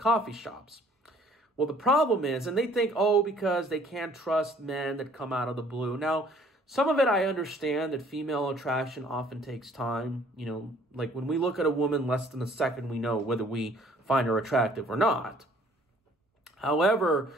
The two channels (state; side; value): normal; both; correlation 0.57